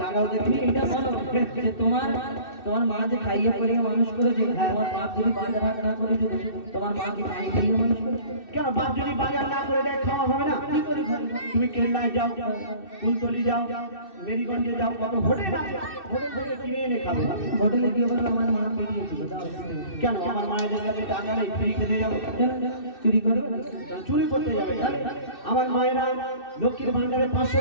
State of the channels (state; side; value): late; right; 2.6 ms